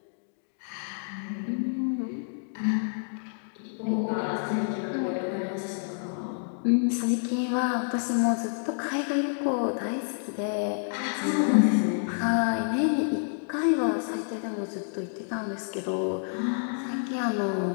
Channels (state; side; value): silent; right; digital silence